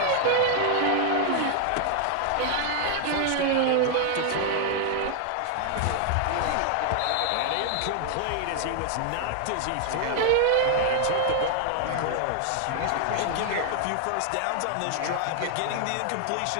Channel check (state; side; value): different; both; correlation 0.00